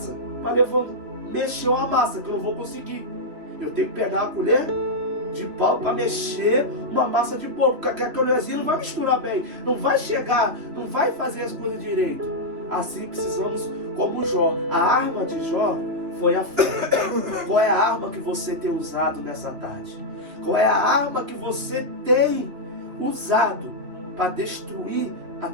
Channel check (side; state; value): left; late; 3.0 ms